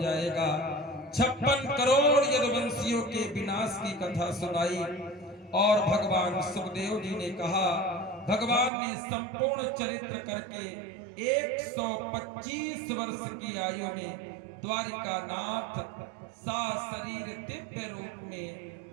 जाएगा। 56 करोड़ यदुवंशियों के विनाश की कथा सुनाई और भगवान सुखदेव जी ने कहा, भगवान ने संपूर्ण चरित्र करके 125 वर्ष की आयु में द्वारिकानाथ सा शरीर दिव्य रूप में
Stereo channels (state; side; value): drops out; left; at 8.7 s